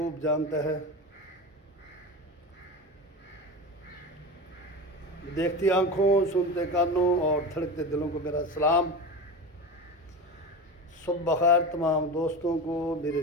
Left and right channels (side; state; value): both; normal; correlation 0.26